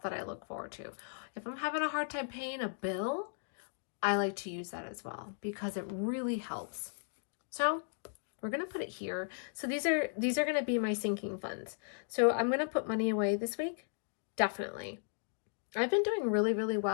that I look forward to. If I'm having a hard time paying a bill, I like to use that as well because it really helps. So we're going to put it here. So these are going to be my sinking funds. So I'm going to put money away this week. Definitely. I've been doing really, really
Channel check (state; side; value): silent; right; digital silence